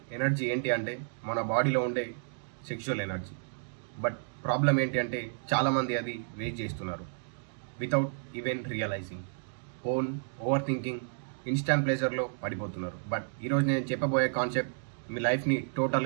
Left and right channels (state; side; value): silent; left; digital silence